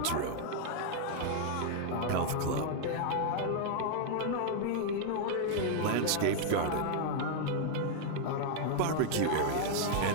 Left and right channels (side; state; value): both; different; correlation 0.00